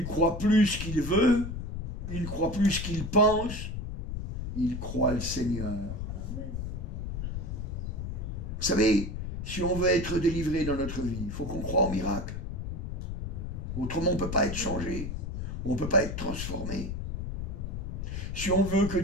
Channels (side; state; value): left; noise; rumble, 5 dB below the sound